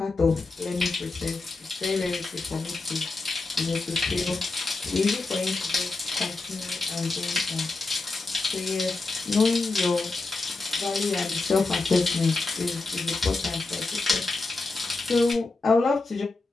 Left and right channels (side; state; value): right; quieter; 3.5 dB